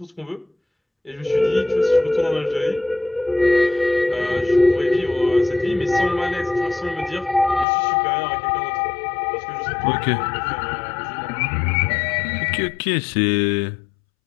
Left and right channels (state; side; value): drops out; right; at 7.7 s